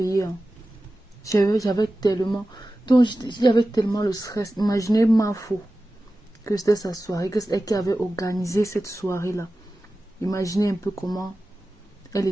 Hein. J'avais tellement. Donc, j'avais tellement le stress. Imaginez ma faux que c'était sa soirée, que c'est elle qui avait organisé cette soirée-là. Imaginez un peu comment elle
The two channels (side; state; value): both; normal; correlation 0.95